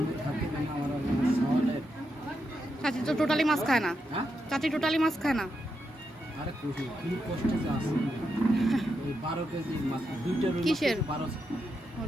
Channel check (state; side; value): normal; both; correlation 0.84